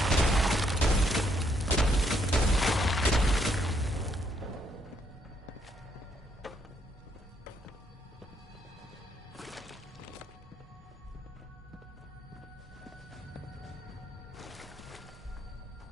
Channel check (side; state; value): both; normal; correlation 0.73